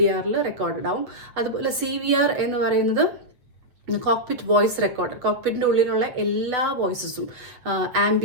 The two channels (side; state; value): left; late; 8.3 ms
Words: റെക്കോർഡഡ് ആവും. അതുപോലെ CVR എന്ന് പറയുന്നത് കോക്പിറ്റ് വോയിസ് റെക്കോർഡർ. കോക്പിറ്റിൻ്റെ ഉള്ളിലുള്ള എല്ലാ വോയിസസും,